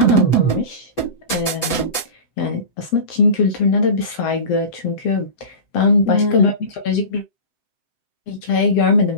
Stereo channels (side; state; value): right; late; 7.8 ms